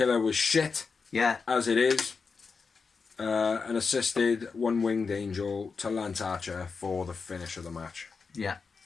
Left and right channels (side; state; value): right; quieter; 5.0 dB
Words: was shit. Yeah. As it is. An assisted one-winged angel to Lance Archer for the finish of the match. Yeah.